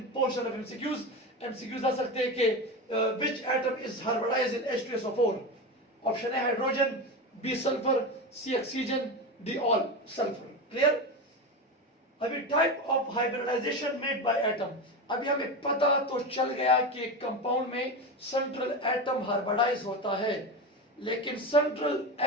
portion of MCQs. MCQs आ सकते हैं कि which atom is hybridized in H2SO4. Option है hydrogen, B sulphur, C oxygen, D all sulphur. Clear. अभी type of hybridization made by atom. अभी हमें पता तो चल गया कि एक कंपाउंड में सेंट्रल एटम हाइब्रिडाइज होता है, लेकिन सेंट्रल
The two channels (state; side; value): normal; both; correlation 0.20